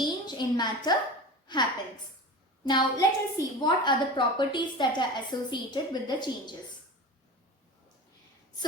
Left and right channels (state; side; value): normal; both; correlation 0.31